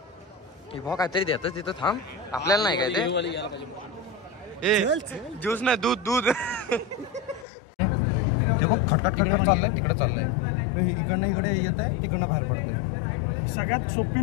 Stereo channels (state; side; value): drops out; right; at 7.5 s